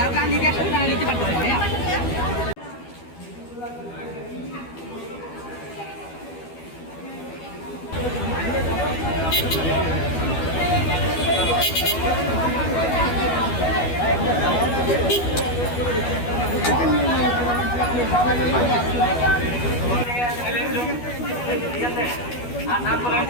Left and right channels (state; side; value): late; right; 12 ms